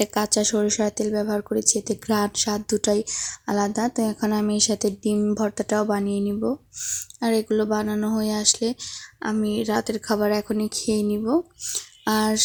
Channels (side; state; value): both; identical; correlation 1.00